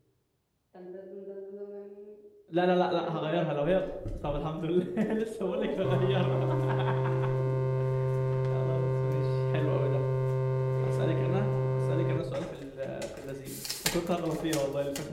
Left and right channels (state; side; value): identical; both; correlation 1.00